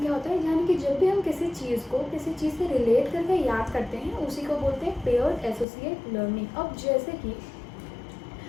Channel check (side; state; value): right; drops out; at 5.7 s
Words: क्या होता है, यानी कि जब भी हम किसी चीज़ को किसी चीज़ से रिलेट करके याद करते हैं, उसी को बोलते हैं पेयर्ड एसोसिएट लर्निंग। अब